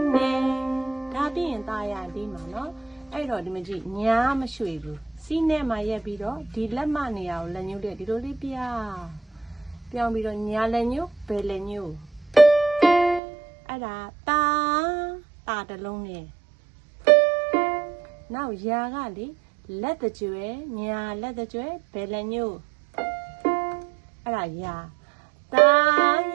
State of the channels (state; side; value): drops out; left; at 13.2 s